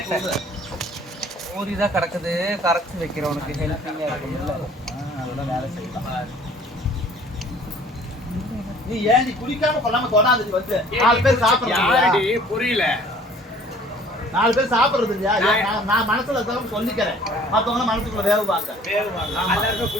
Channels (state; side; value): normal; both; correlation 0.53